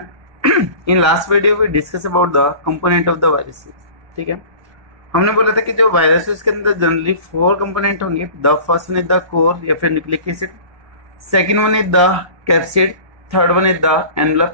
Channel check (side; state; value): left; late; 1.2 ms